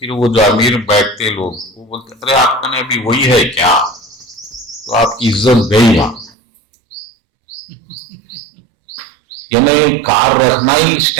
वो जो अमीर बैठते लोग वो बोलते, अरे आपका ने अभी वही है क्या? तो आपकी इज्जत गई वहां। यानी कार रखना ही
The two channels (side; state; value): left; drops out; at 6.3 s